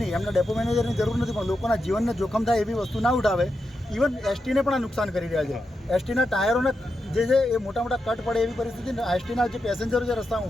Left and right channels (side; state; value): both; normal; correlation 0.87